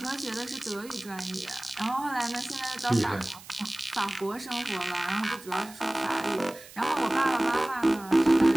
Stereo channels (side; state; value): right; noise; hiss, 19 dB below the sound